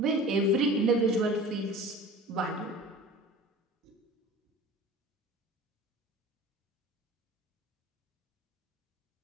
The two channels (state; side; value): normal; both; correlation 0.40